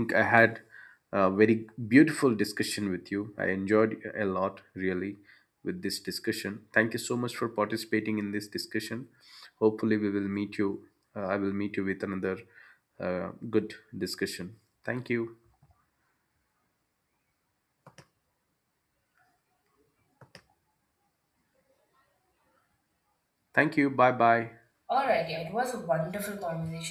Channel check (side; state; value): both; identical; correlation 1.00